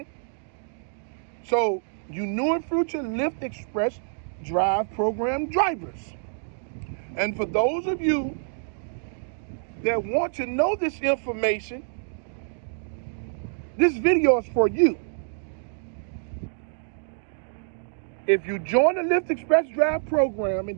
So, you new and future Lyft Express Drive program drivers. And for those of you that want to know this information, this video is for you. If you join the Lyft Express Drive program and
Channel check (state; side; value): silent; left; digital silence